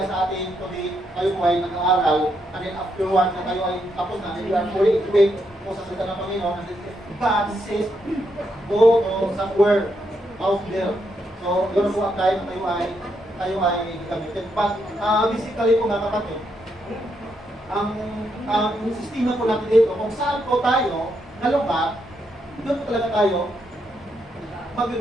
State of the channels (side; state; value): both; normal; correlation 0.79